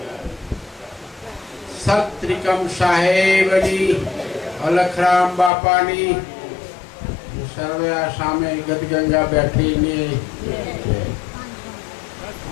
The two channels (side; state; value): right; drops out; at 5.5 s